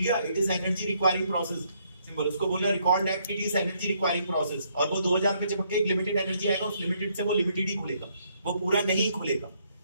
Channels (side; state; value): both; inverted; correlation -0.71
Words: it is energy requiring process. Simple. उसको बोलना recall that it is energy requiring process. और वो 2000 पे चिपक के एक लिमिटेड एनर्जी आएगा, उस लिमिटेड से वो लिमिटेड ही खुलेगा, वो पूरा नहीं खुलेगा।